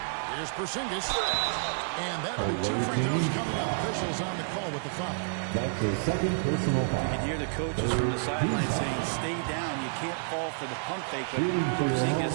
Here's Porzingis. And that'll be 2 free throws coming up. Officials on the call with the foul. That's his second personal foul. You can hear the coaches from the sideline saying, stay down. You can't fall for the pump fake. But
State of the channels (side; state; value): left; silent; 58 dB below the other